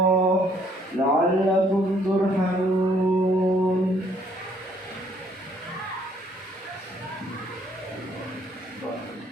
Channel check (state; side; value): normal; both; correlation 0.64